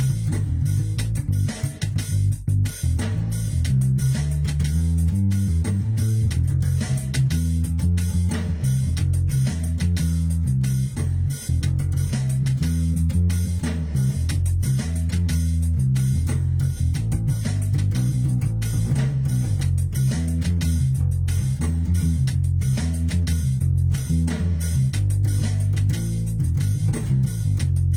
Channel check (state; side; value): identical; both; correlation 1.00